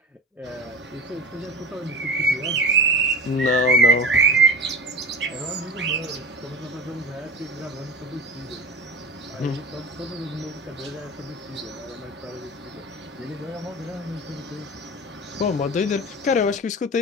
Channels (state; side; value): normal; both; correlation 0.32